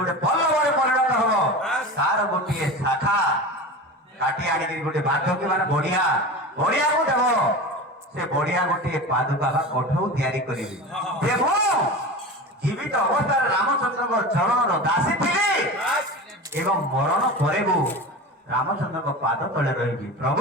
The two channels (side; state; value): both; normal; correlation 0.29